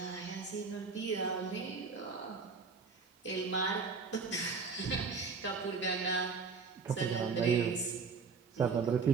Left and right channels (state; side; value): quieter; left; 4.9 dB